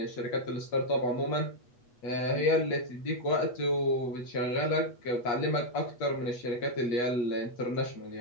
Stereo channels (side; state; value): right; late; 8.2 ms